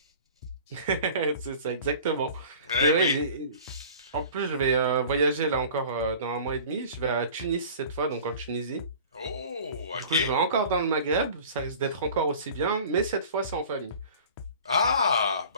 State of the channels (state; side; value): inverted; both; correlation -0.44